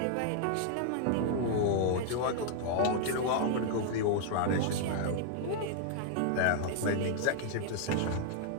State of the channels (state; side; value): different; both; correlation 0.00